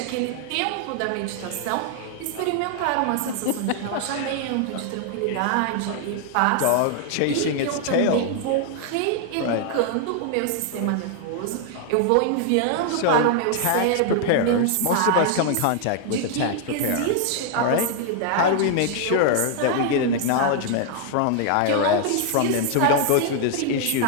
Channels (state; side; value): different; both; correlation 0.00